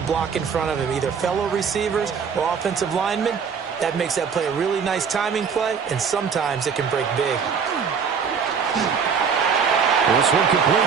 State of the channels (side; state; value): left; quieter; 6.4 dB